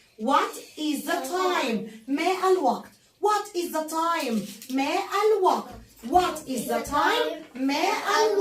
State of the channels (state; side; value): identical; both; correlation 1.00